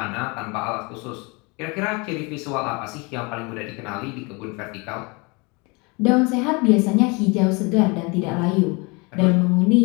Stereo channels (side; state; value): right; quieter; 28.6 dB